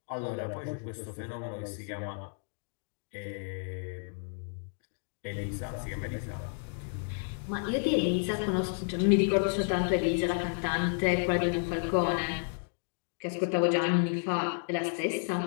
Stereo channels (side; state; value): right; silent; 57 dB below the other